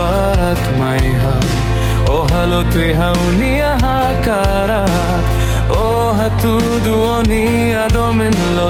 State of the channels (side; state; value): both; identical; correlation 1.00